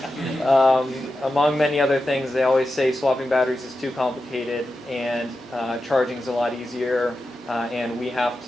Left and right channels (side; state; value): both; normal; correlation 0.91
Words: Among many other things, they always say swapping batteries is too complicated and charging is a lot easier, and we have